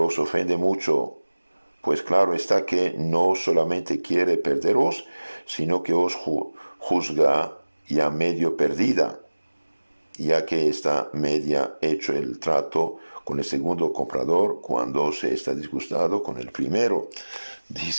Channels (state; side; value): inverted; both; correlation -1.00